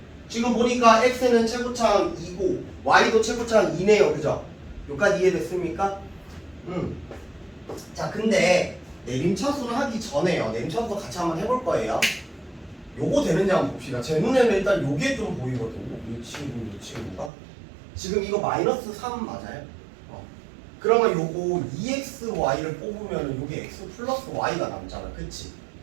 지금 보니까 x는 최고차항 2고 y도 최고차항 2네요. 그죠? 여기까지 이해됐습니까? 자, 근데 내림차순 하기 전에요. 내림차순 같이 한번 해볼 거예요. 요거 되는지 한번 봅시다. 제 눈에는 일단 요게 좀 보이거든요. 이 친구가 지금 이거 마이너스 3 맞아요? 그러면 요거 2xy를 뽑으면 요게 x 플러스 y가 남잖아. 그치?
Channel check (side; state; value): left; drops out; at 17.3 s